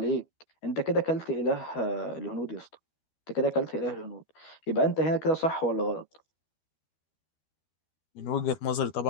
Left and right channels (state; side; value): late; right; 13 ms